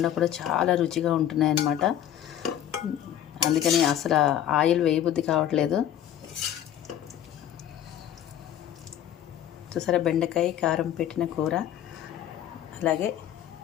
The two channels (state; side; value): quieter; right; 10.8 dB